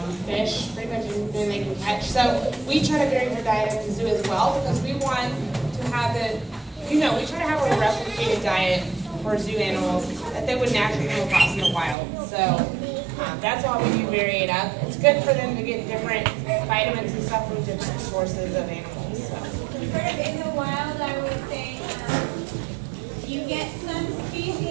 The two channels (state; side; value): drops out; left; at 12.0 s